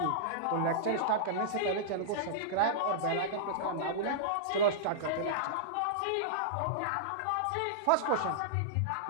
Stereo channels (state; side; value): different; both; correlation -0.02